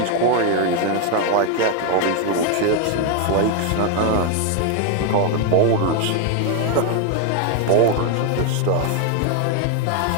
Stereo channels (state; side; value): different; both; correlation 0.00